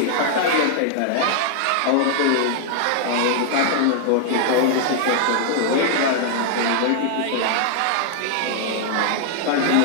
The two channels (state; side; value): different; both; correlation 0.00